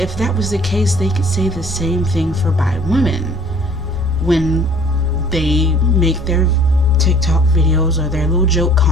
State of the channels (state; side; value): normal; both; correlation 0.53